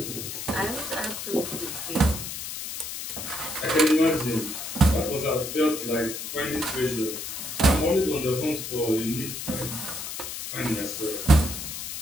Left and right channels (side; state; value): left; noise; hiss, 7 dB below the sound